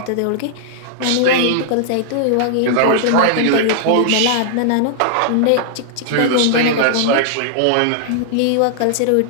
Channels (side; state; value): both; different; correlation -0.01